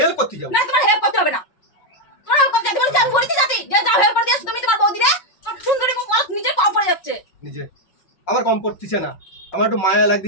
করতে যাও না তোমার হেল্প করতে হবে না। তোমার হেল্প করতে যাবে আমি বলেছি জাতি যে যাও হেল্প করে দিও তুমি তোমার বৌদি রে। তোমার সুন্দরী মুখ বলো নিজে কম পড়ে যাচ্ছে। নিজে আমার কম পড়তিছে না, আমার একটু মায়া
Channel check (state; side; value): late; right; 5.6 ms